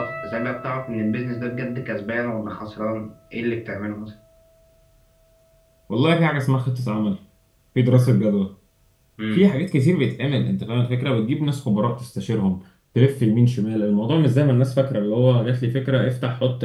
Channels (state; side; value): identical; both; correlation 1.00